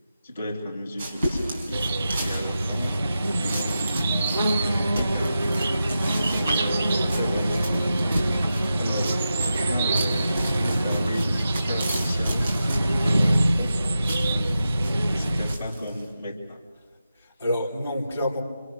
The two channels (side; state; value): both; inverted; correlation -0.90